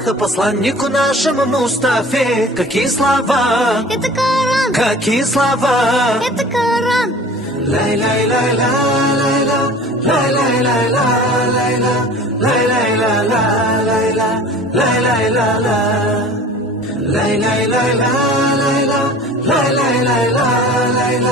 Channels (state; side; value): normal; both; correlation 0.43